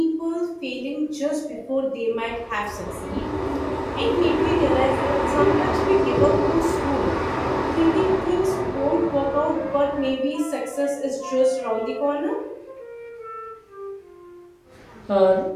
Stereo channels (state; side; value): identical; both; correlation 1.00